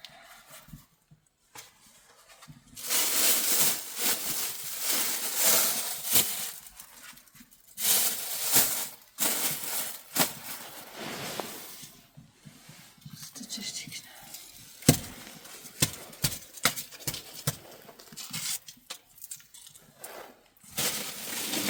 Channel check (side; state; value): both; identical; correlation 1.00